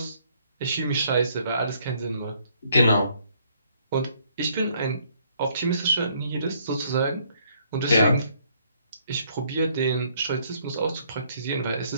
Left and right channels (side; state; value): both; inverted; correlation -0.66